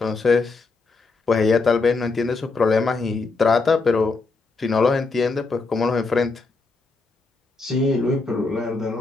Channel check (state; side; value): quieter; right; 3.9 dB